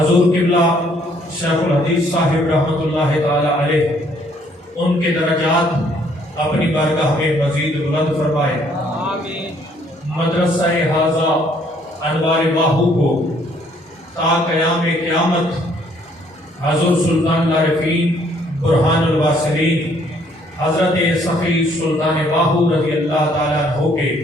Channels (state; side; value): normal; both; correlation 0.64